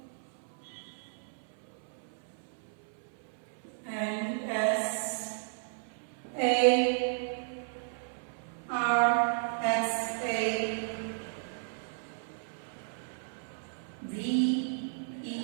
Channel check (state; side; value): silent; left; 55 dB below the other